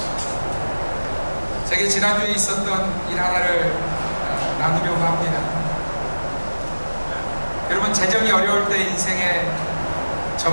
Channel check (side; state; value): both; inverted; correlation -1.00